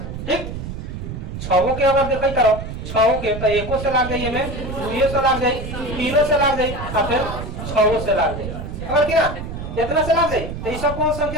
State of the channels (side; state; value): right; noise; rumble, 7 dB below the sound